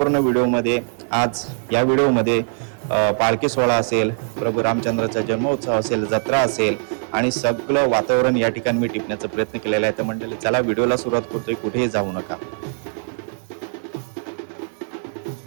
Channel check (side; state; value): left; silent; 64 dB below the other